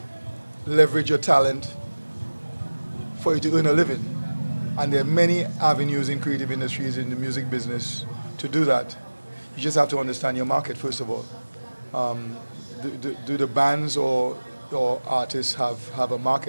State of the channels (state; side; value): inverted; both; correlation -1.00